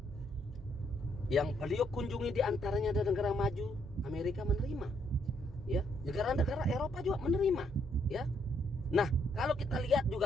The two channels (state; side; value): normal; both; correlation 0.72